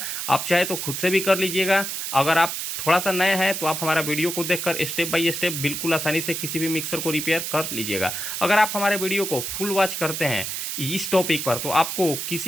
आप चाहे तो खुद से भी कर लीजिएगा। अगर आप थोड़ा सा नया है तो आप हमारा वीडियो को देखकर स्टेप बाय स्टेप बिल्कुल आसानी से किसी भी मिक्सर को रिपेयर कर लीजिएगा। अगर आप हमारे वीडियो को फुल वॉच करते हैं इस टॉपिक पर तो आपको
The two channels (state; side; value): noise; right; hiss, 4 dB below the sound